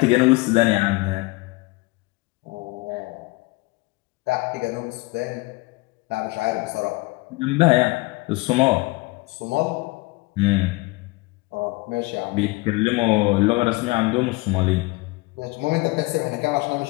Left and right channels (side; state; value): right; quieter; 23.4 dB